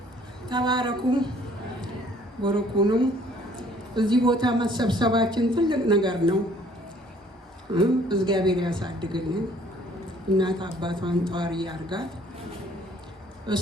ተባረኩ። ወርቁኑ እዚህ ቦታ መሰብሰባችን ትልቅ ነገር ነው። እግዚአብሔር ያሳድግልን። እናት አባቷን ጧሪ ያርጋት።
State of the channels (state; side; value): normal; both; correlation 0.58